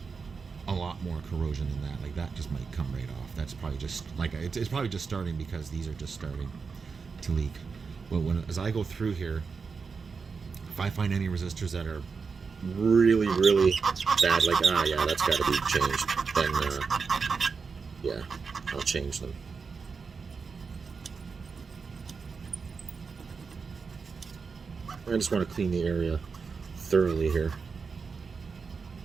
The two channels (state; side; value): quieter; left; 5.2 dB